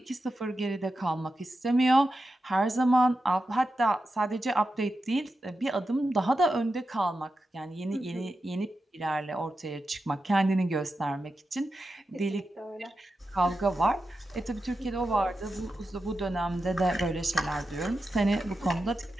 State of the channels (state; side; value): normal; both; correlation 0.90